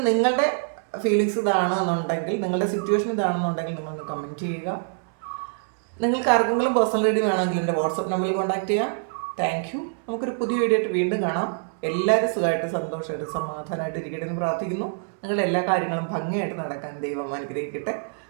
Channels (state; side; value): silent; left; 62 dB below the other